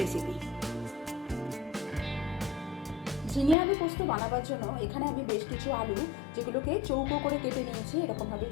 রেসিপি। ঝিঙে আলু পোস্ত বানাবার জন্য এখানে আমি বেশ কিছু আলু, যেগুলোকে চৌকো করে কেটে নিয়েছি, এরকমভাবে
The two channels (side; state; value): right; drops out; at 3.6 s